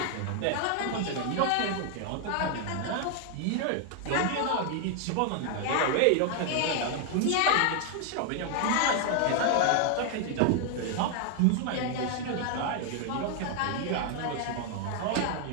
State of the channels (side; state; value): both; different; correlation 0.00